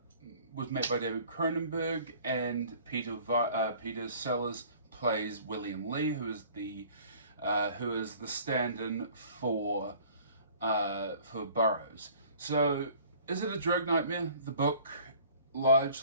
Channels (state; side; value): inverted; both; correlation -0.51